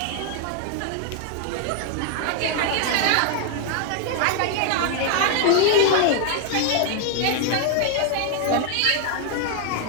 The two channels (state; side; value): different; both; correlation 0.00